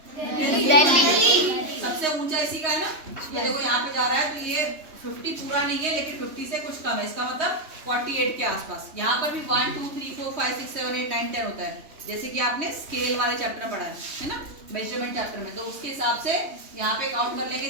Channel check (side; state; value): left; late; 3.2 ms